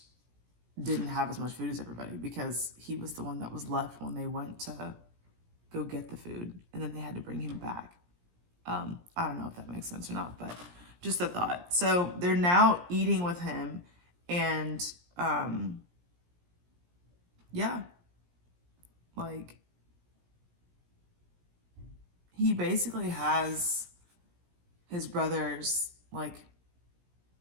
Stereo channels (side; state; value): left; late; 17 ms